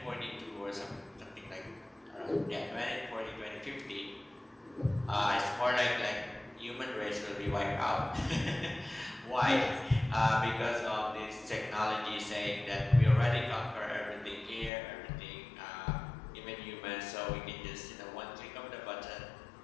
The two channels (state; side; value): drops out; right; at 14.7 s